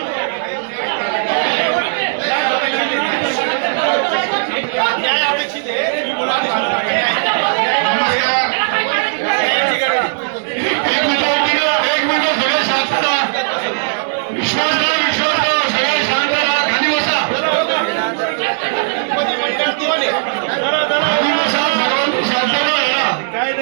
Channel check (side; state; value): left; silent; 59 dB below the other